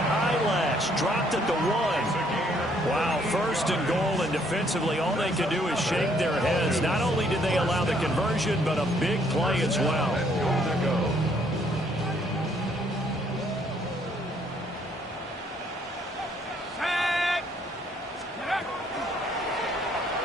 Dropped at the 1. Wow, first and goal, and defensively, all they could do is shake their heads. Not only did they allow the conversion, but a big play as well.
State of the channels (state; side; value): normal; both; correlation 0.66